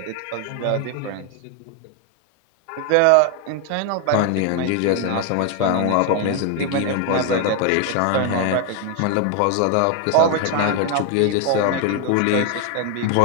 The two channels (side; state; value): both; different; correlation 0.01